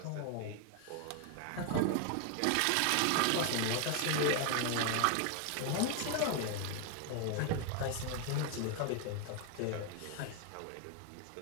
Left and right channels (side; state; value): both; different; correlation 0.00